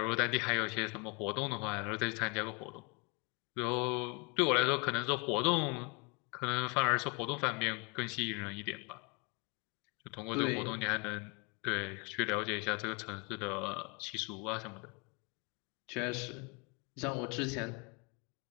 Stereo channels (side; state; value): right; quieter; 31.4 dB